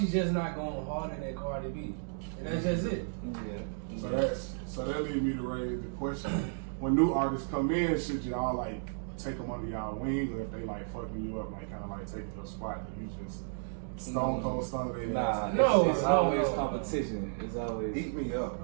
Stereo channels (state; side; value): silent; left; digital silence